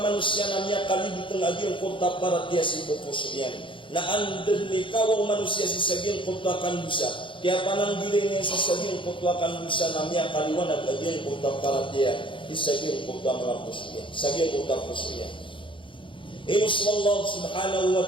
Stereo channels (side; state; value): right; late; 0.25 ms